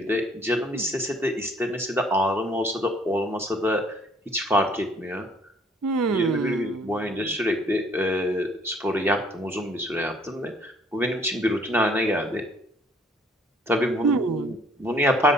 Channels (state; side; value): normal; both; correlation 0.60